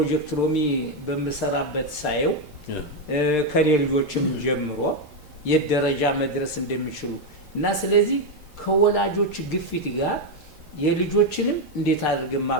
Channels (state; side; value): normal; both; correlation 0.05